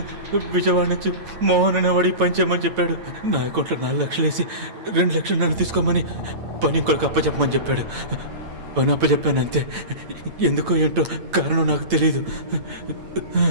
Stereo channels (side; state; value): left; late; 8.9 ms